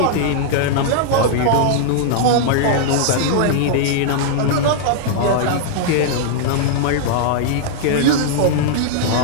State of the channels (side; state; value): both; different; correlation -0.01